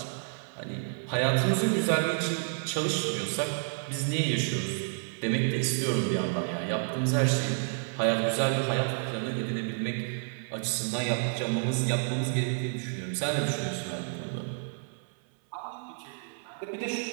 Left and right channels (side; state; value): left; silent; 58 dB below the other